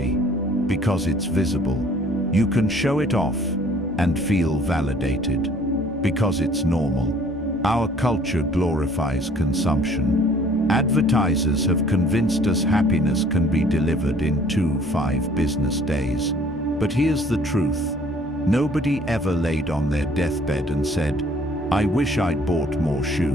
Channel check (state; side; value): normal; both; correlation 0.56